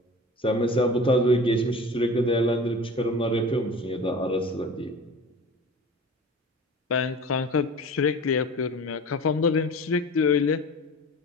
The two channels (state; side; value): normal; both; correlation 0.37